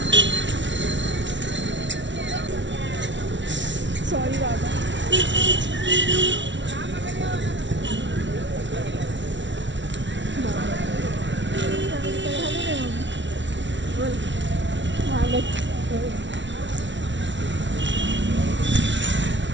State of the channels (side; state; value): left; late; 0.54 ms